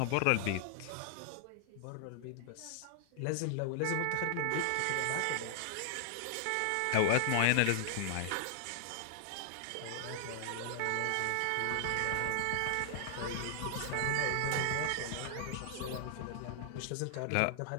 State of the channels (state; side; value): different; both; correlation -0.01